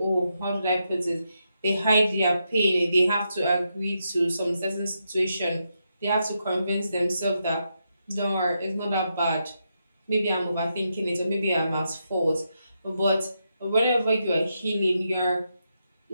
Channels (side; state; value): both; inverted; correlation -0.83